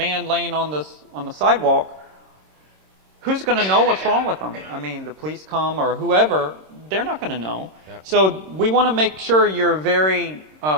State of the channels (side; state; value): left; late; 26 ms